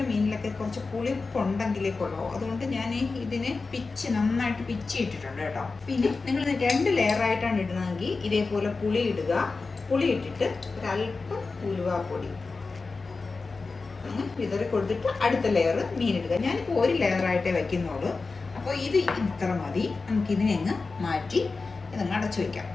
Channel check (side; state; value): right; quieter; 4.1 dB